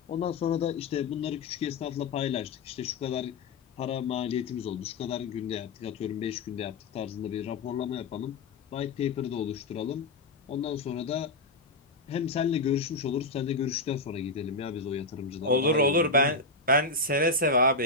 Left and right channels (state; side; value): quieter; right; 3.2 dB